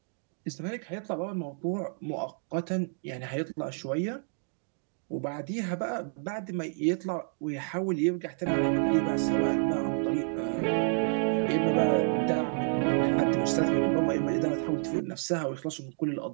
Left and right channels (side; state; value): left; silent; 58 dB below the other